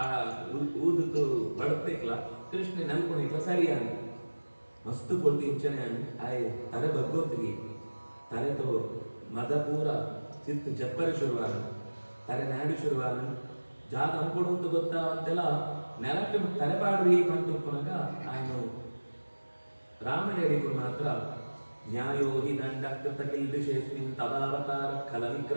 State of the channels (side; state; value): both; inverted; correlation -1.00